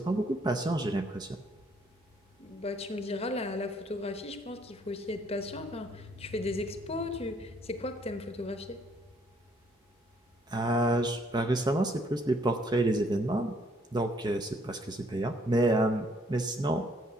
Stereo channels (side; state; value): both; normal; correlation 0.66